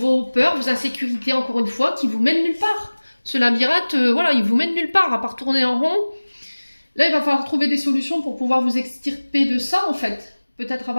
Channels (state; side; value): inverted; both; correlation -1.00